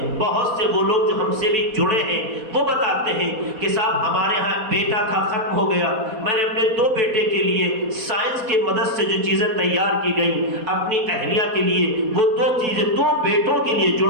بہت سے وہ لوگ جو ہم سے بھی جڑے ہیں وہ بتاتے ہیں کہ صاحب ہمارے ہاں بیٹا تھا ختم ہو گیا، میں نے اپنے 2 بیٹے کے لیے سائنس کے مدد سے جو چیزیں تیار کی گئیں اپنی اہلیہ کے لیے، وہ 2 چیزیں 2 بیٹوں کے لیے،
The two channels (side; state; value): left; late; 4.2 ms